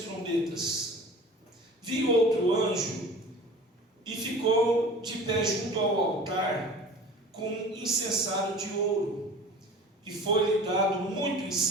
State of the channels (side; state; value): both; normal; correlation 0.41